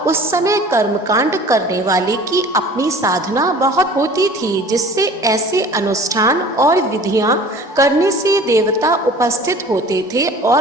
उस समय कर्मकांड करने वाले की अपनी साधना बहुत होती थी, जिससे ऐसे अनुष्ठान और विधियां करने से देवता उपस्थित होते थे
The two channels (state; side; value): normal; both; correlation 0.45